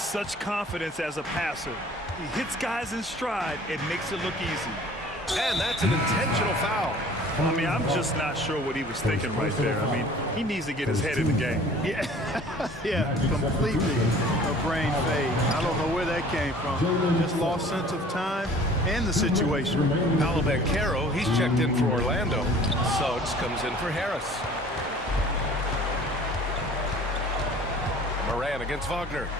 confidence as a passer. He hits guys in stride. It makes it look easy. And that's an intentional foul. I mean, I'm just not sure what he was thinking right there. I mean, he needs to get his head in the game. Yeah, yeah, completely a brain fade. I don't know where that came from. Just lost sense of time and the situation. Paolo Banchero, he's checked in for Orlando. Suggs comes in for Harris. Morant against Wagner.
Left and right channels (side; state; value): both; normal; correlation 0.49